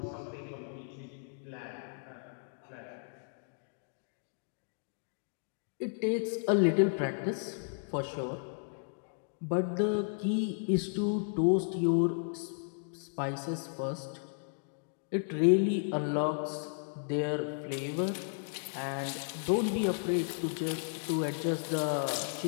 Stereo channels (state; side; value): silent; right; digital silence